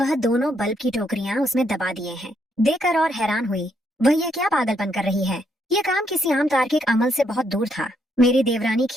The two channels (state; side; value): normal; both; correlation 0.75